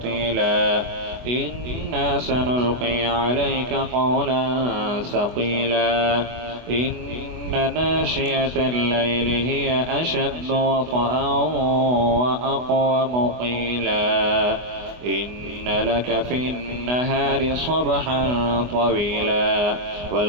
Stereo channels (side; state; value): left; late; 24 ms